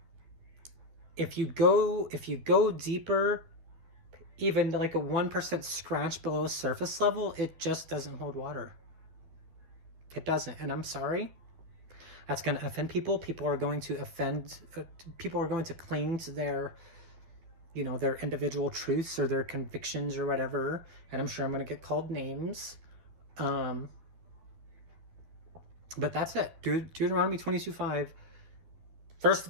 If you go deeper, even like a 1% scratch below surface level, it just doesn't hold water. It doesn't, and I'm sorry. That's going to offend people. People are going to people are going to cling to their, you know, their individual truths or their convictions or whatever, and I'm sure I'm going to get called names. But that's it. Deuteronomy 22:5, first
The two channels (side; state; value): left; late; 12 ms